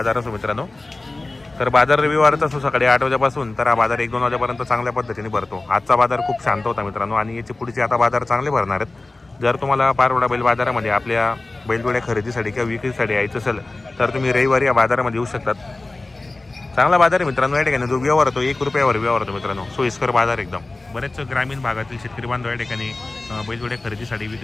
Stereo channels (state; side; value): quieter; right; 3.1 dB